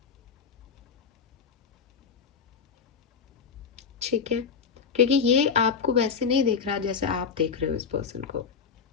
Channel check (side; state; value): right; quieter; 6.1 dB